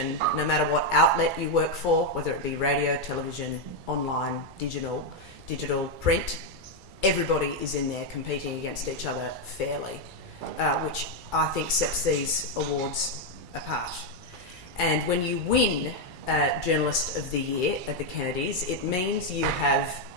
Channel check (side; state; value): left; late; 2.3 ms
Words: no matter what outlet you work for, whether it be radio, television, online, digital, print, everybody is in there competing against each other fairly, which I think sets these awards apart. And when you win Journalist of the Year at the Kennedys, it means you have